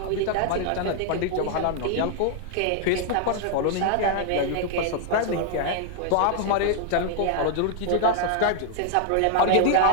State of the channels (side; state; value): both; different; correlation 0.00